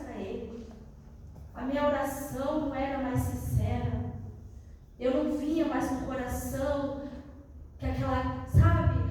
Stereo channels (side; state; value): both; identical; correlation 1.00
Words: para Ele, a minha oração não era mais sincera, eu não vinha mais com o coração, que aquela,